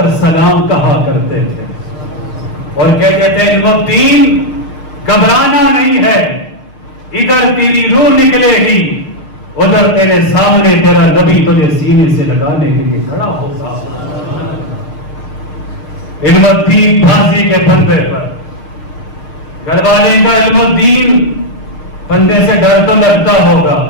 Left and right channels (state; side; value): late; right; 6.5 ms